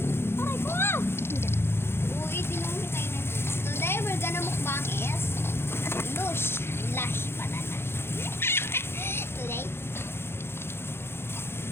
Aray ko! Uy, tinungkitay na. Today, we're gonna mukbang is lush pala na. Today.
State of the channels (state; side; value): late; right; 0.11 ms